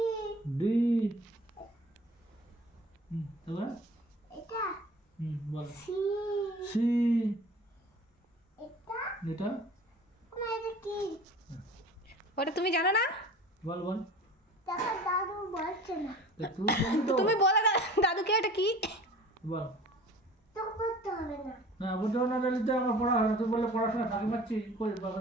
ডি তারপরে এটা বল সি সি এটা এটা না এটা কি ওটা তুমি জানো না? বল বল দেখো দাদু বলছে না তা তুই বলি তো তুমি বলে দাদুকে এটা কি? বল তো করতে হবে না না বুঝতে না দিলে আমার পড়া হয় না তুই বললে পড়াশোনা ফাঁকি মারছি কই বাবা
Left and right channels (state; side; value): normal; both; correlation 0.42